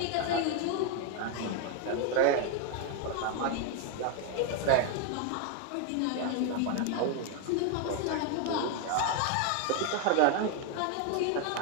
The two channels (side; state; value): both; different; correlation 0.01